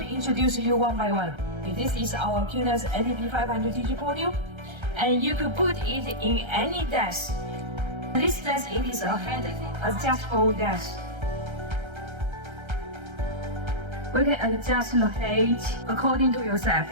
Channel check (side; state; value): left; late; 1.3 ms